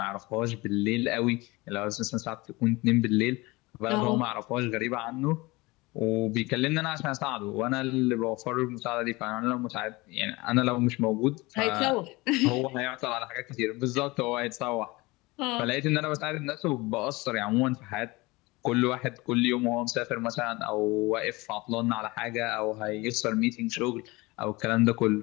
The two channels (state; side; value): quieter; right; 22.8 dB